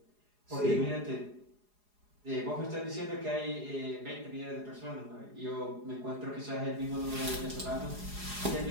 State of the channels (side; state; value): left; late; 4.8 ms